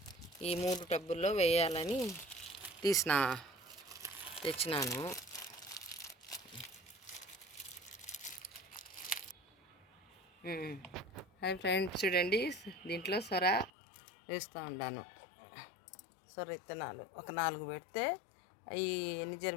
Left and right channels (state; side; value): drops out; right; at 13.7 s